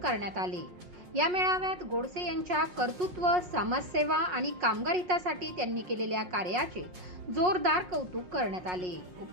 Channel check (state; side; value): late; left; 5.5 ms